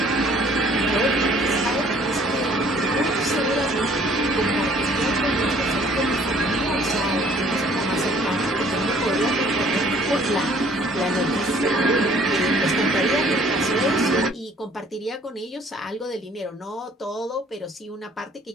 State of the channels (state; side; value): normal; both; correlation 0.58